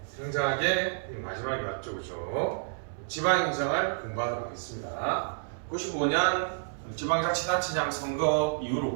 굉장하게 마지막이 왔죠, 그죠? 지방행정을 공부하도록 하겠습니다. 95년 지방자치단체장 선거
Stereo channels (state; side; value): silent; left; 58 dB below the other